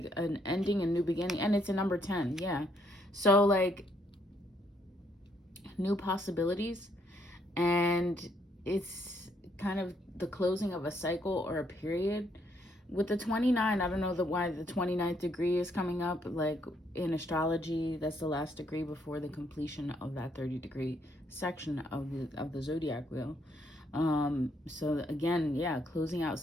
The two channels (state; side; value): normal; both; correlation 0.72